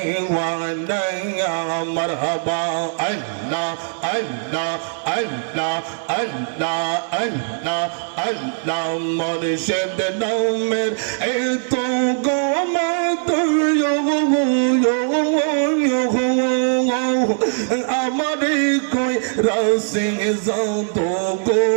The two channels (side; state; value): left; silent; 59 dB below the other